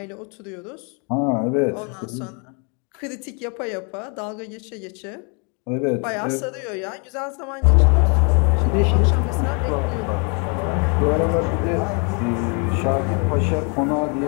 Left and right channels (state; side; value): quieter; right; 35.8 dB